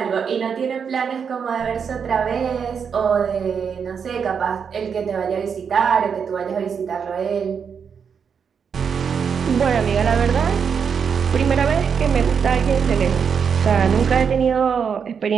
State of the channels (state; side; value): quieter; left; 6.7 dB